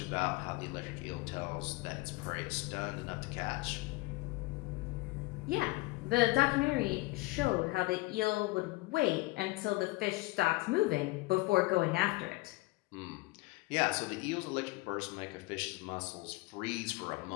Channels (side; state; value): right; quieter; 21.7 dB